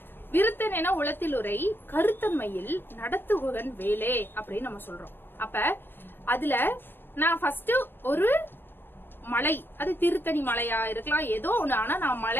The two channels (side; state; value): right; late; 0.10 ms